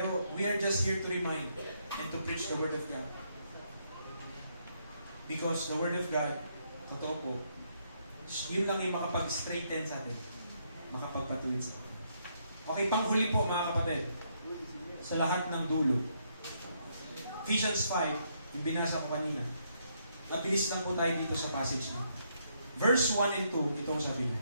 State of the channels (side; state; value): both; inverted; correlation -0.74